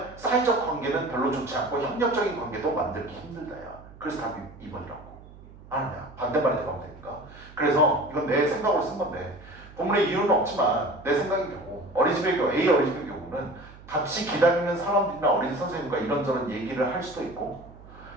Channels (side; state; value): right; noise; hum, 20 dB below the sound